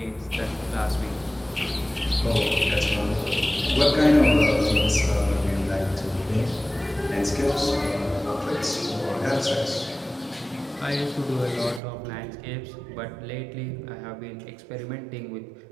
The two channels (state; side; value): drops out; left; at 11.8 s